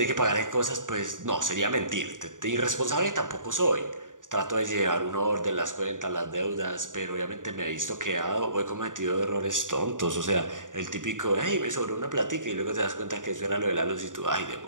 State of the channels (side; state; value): left; late; 0.88 ms